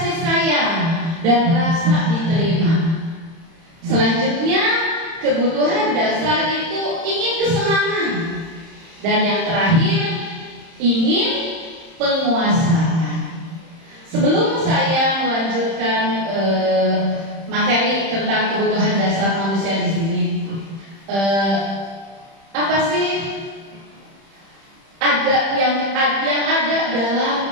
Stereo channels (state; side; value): late; left; 30 ms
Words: sayang dan rasa diterima. Selanjutnya, kebutuhan dasar itu ingin kesenangan. Dan yang terakhir, ingin penguasaan. Sebelum saya melanjutkan materi tentang kebutuhan dasar manusia di sini, apa sih yang ada dalam